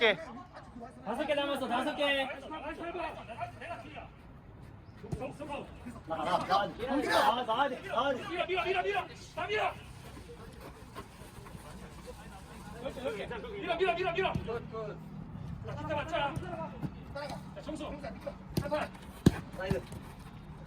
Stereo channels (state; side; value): identical; both; correlation 1.00